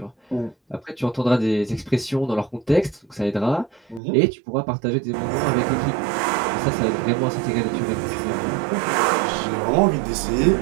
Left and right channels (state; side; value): drops out; left; at 4.0 s